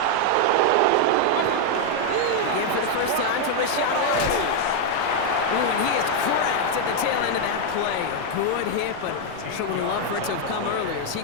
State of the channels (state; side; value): different; both; correlation 0.00